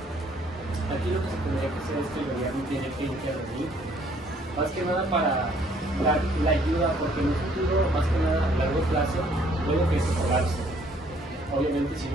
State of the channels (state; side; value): normal; both; correlation 0.62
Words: Aquí lo que se tendría que hacer es que el gobierno tiene que intervenir, más que nada para dar la ayuda, porque en un futuro, más que nada a largo plazo, puede que se colapse. Obviamente si